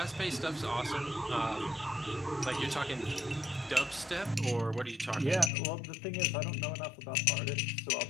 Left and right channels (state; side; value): drops out; right; at 5.5 s